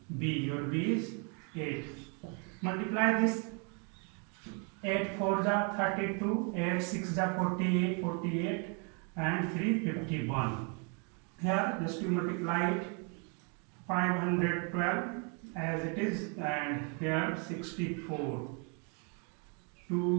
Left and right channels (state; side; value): quieter; left; 36.9 dB